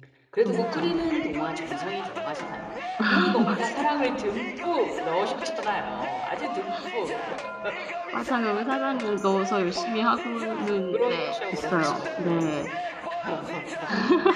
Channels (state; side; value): identical; both; correlation 1.00